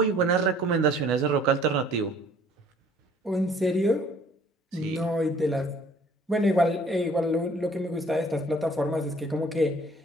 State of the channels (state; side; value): normal; both; correlation 0.56